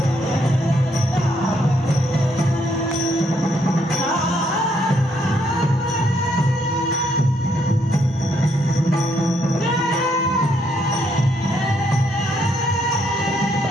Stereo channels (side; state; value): both; normal; correlation 0.73